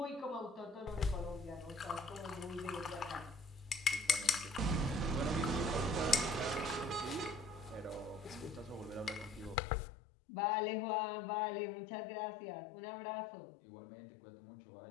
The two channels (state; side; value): drops out; right; at 9.6 s